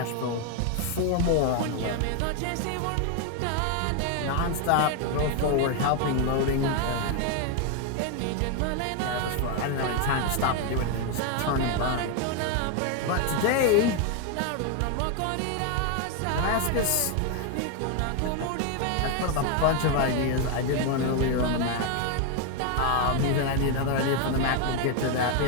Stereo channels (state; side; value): different; both; correlation 0.01